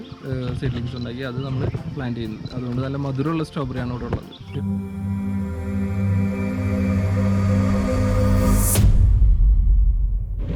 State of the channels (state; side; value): identical; both; correlation 1.00